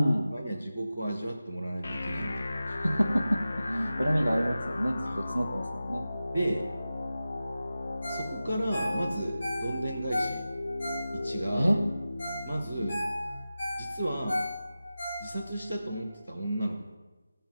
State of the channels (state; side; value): inverted; both; correlation -0.94